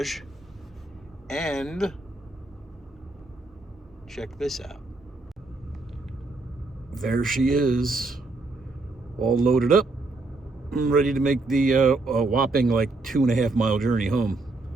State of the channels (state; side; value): quieter; left; 3.3 dB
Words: And check this out. There she is, all loaded up. I'm ready to make the whopping like 2.5 mile journey home.